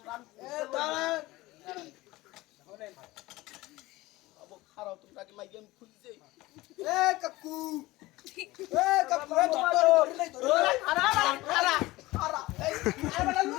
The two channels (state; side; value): quieter; right; 19.3 dB